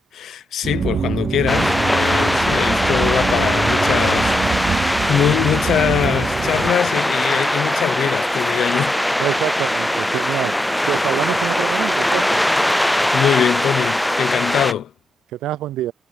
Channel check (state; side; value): normal; both; correlation 0.84